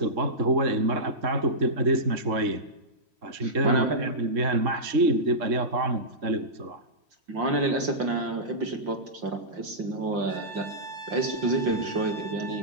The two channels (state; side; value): late; left; 3.1 ms